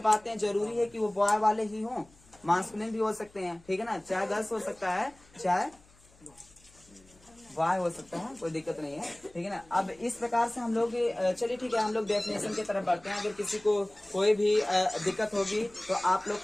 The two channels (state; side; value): noise; left; hum, 28 dB below the sound